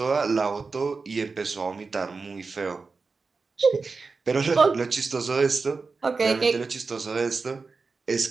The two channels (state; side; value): quieter; left; 4.4 dB